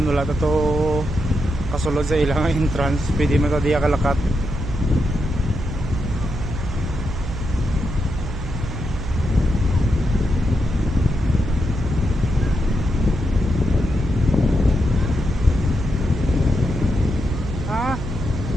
wala to kasulod sa ilang entrance. Pwede man ta diya kalakat. Ah.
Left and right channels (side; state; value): right; noise; hum, 7 dB below the sound